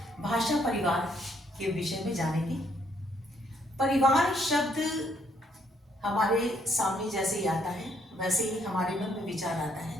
भाषा परिवार के विषय में जानेंगे। परिवार शब्द हमारे सामने जैसे ही आता है वैसे ही हमारे मन में विचार आता है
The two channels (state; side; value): normal; both; correlation 0.70